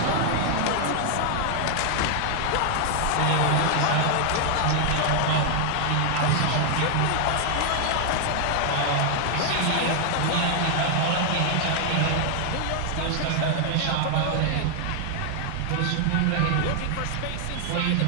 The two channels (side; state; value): both; different; correlation 0.00